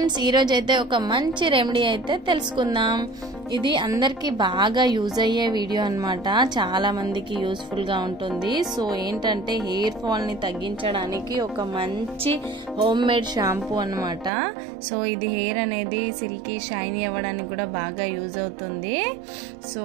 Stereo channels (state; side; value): drops out; left; at 14.3 s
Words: ఈరోజు అయితే ఒక మంచి రెమెడీ అయితే తెలుసుకుందాం. ఇది అందరికీ బాగా యూజ్ అయ్యే వీడియో అన్నమాట. చాలా మందికి యూస్ఫుల్ గా ఉంటుంది. సో ఏంటంటే హెయిర్ ఫాల్ ని తగ్గించడానికి ఒక మంచి హోమ్ మేడ్ షాంపూ అన్నమాట. సో ఇది హెయిర్ అనేది సిల్కీ షైనీ అవ్వడానికి కూడా బాగా యూజ్ అవుతుంది. సో